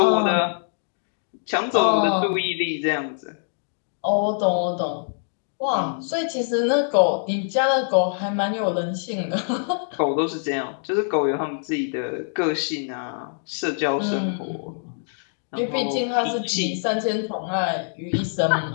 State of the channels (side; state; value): right; silent; digital silence